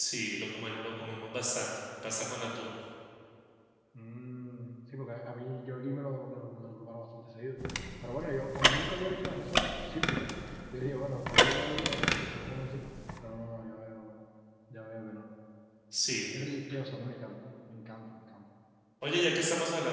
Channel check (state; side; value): identical; both; correlation 1.00